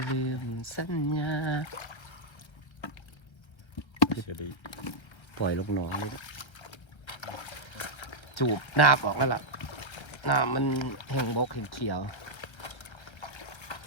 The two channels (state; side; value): late; right; 1.3 ms